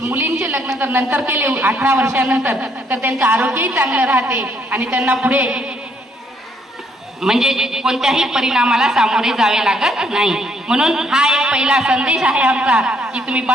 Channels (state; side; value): normal; both; correlation 0.69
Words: लग्न जर नंतर केले 18 वर्षानंतर तर त्यांचं आरोग्यही चांगलं राहते आणि त्यांना पुढे म्हणजे कोणत्याही परिणामाला सामोरे जावे लागत नाही। म्हणून हा एक पहिला संदेश आहे आमचा की तुम्ही